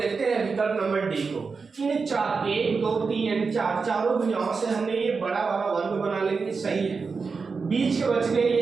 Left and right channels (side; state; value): left; quieter; 4.8 dB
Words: हैं विकल्प नंबर डी को। इन 4 1, 2, 3 एंड 4 चारों भुजाओं से हमने ये बड़ा वाला वर्ग बना लेंगे, सही है। बीच के बच गए